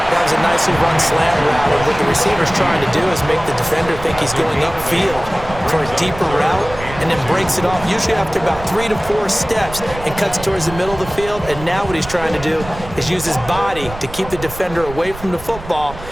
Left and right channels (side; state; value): right; noise; rumble, 13 dB below the sound